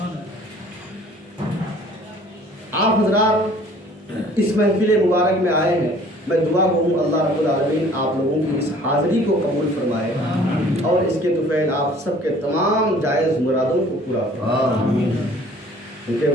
آپ حضرات اس محفل مبارک میں آئے ہیں، میں دعا کروں اللہ رب العالمین آپ لوگوں کی اس حاضری کو قبول فرمائے اور اس کے طفیل آپ سب کے تمام جائز مرادوں کو پورا فرمائے۔ کیونکہ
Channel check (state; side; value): normal; both; correlation 0.53